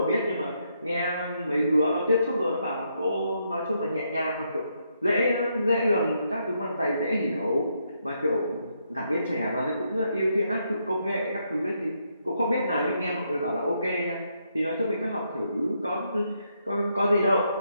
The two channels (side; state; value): both; inverted; correlation -0.78